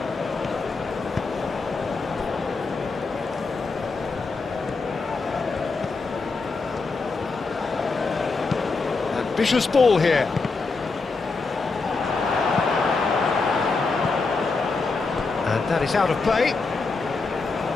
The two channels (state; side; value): quieter; right; 4.1 dB